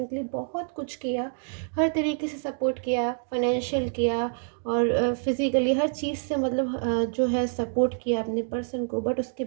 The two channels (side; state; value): left; silent; digital silence